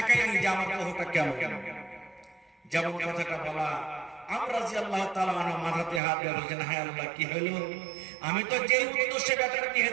যে আমার বহুটা কেমন। যেমন কথাটা বলা, আমরা রাদিয়াল্লাহু তাআলা আনহু মাথাতে হাত দিয়ে বলছেন, হায় আল্লাহ কি হলো? আমি তো যে উদ্দেশ্যে বেটার বিয়ে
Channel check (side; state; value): left; drops out; at 6.0 s